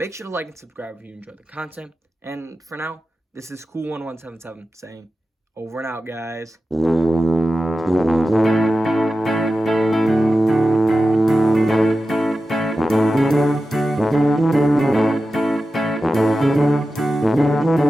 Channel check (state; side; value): normal; both; correlation 0.92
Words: sure to like and subscribe if you enjoyed the content. And for now, this is Cool1177 saying, over and out, guys.